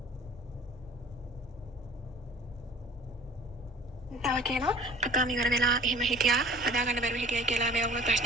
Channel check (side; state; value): both; normal; correlation 0.48